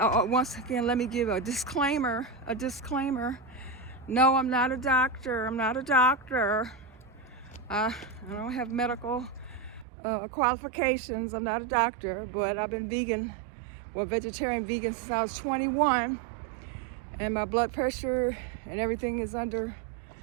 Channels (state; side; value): drops out; left; at 9.9 s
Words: once again, let me give a disclaimer. No, I'm not a doctor. I don't have medical qualifications. I'm not a doctor, but I've been vegetarian vegan since I was 21, and my blood pressure and everything is under